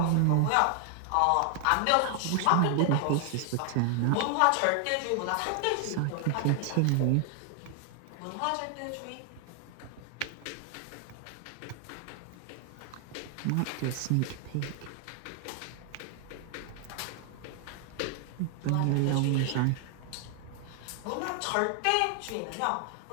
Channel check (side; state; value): both; different; correlation 0.00